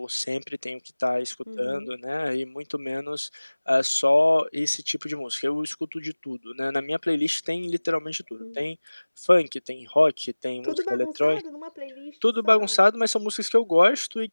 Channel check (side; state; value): both; inverted; correlation -1.00